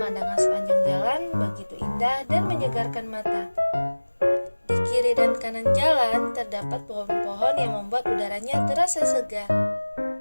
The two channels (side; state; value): both; inverted; correlation -1.00